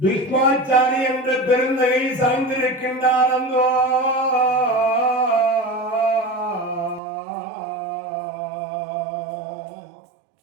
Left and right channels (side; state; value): left; drops out; at 7.0 s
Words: என்ற பெருந்தகை சாய்ந்திருக்கின்றார். அந்தோ